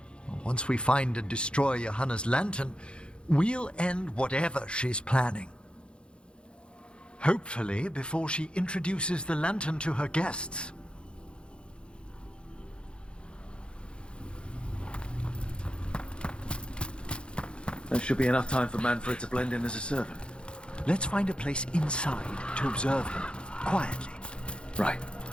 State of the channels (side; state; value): right; late; 0.055 ms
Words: Once we find and destroy Johanna's lantern, we'll end whatever she's planning. Hopefully before she introduces the lantern to her guests. There should be enough time for Manfred to blend in as a servant. Let's find a place inside to observe him, quietly. Right.